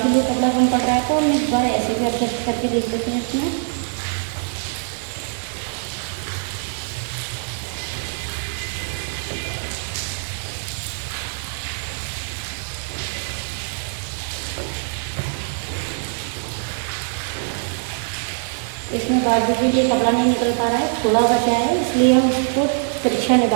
लिए कपड़ा कम पड़ रहा है तो हम इस बार ऐसे भी एडजस्ट करके देख लेते हैं इसमें। इसमें बाजू के लिए कपड़ा नहीं निकल पा रहा है, थोड़ा बचा है, इसलिए हम इसको तिरछा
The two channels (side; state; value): left; silent; digital silence